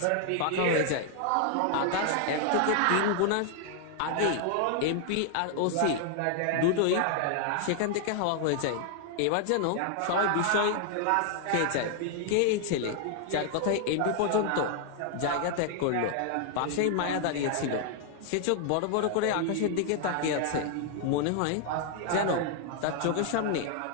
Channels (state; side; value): different; both; correlation 0.00